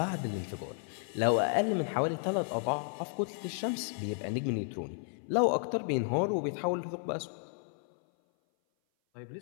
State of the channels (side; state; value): right; silent; 56 dB below the other